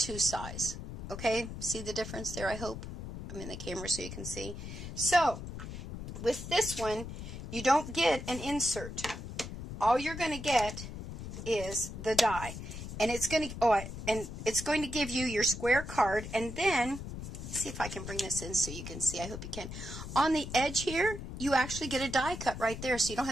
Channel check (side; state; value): left; noise; rumble, 9 dB below the sound